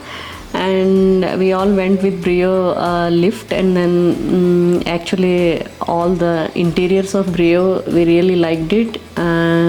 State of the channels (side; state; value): both; identical; correlation 1.00